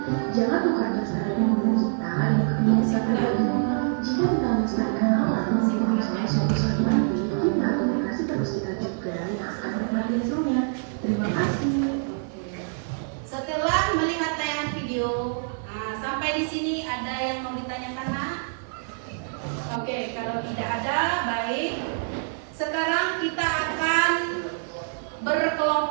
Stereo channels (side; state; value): left; silent; digital silence